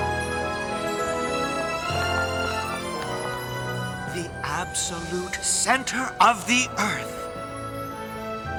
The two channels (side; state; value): both; identical; correlation 1.00